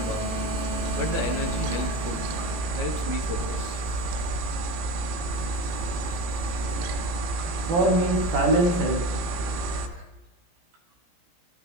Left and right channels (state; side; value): late; left; 18 ms